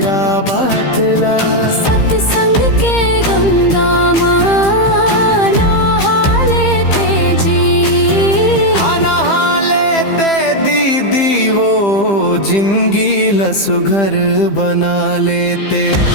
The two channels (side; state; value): right; late; 15 ms